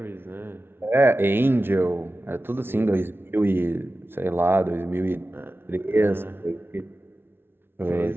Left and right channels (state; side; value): late; left; 0.11 ms